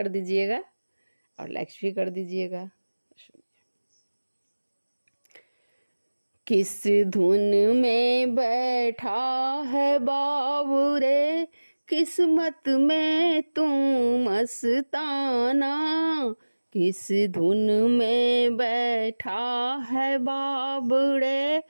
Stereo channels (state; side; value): inverted; both; correlation -1.00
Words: दीजिएगा और लाइक भी कर दीजिएगा। किस धुन में बैठा है बाबू रे, किस्मत में तू मस्ताना। किस धुन में बैठा है बाबू रे,